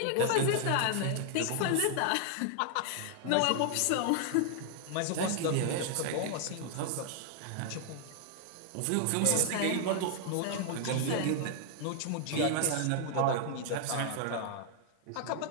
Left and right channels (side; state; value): both; different; correlation 0.00